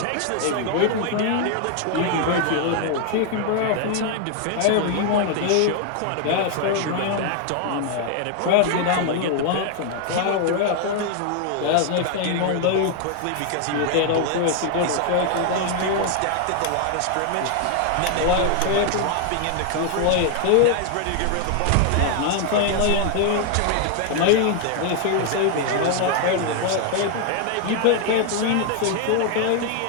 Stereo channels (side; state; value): both; different; correlation 0.00